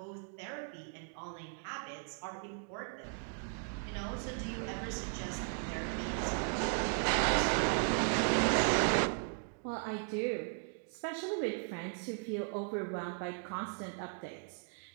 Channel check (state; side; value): silent; left; 53 dB below the other